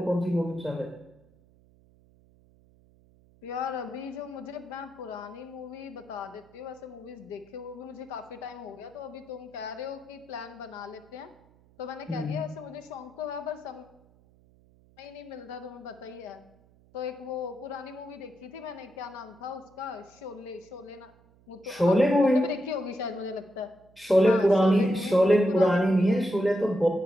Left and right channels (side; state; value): right; noise; hum, 29 dB below the sound